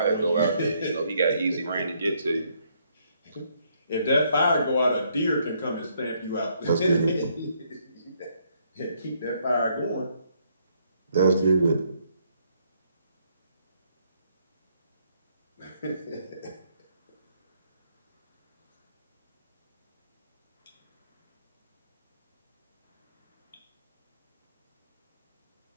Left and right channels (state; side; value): inverted; both; correlation -0.71